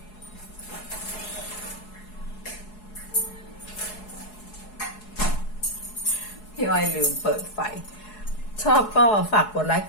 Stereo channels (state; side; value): late; right; 4.7 ms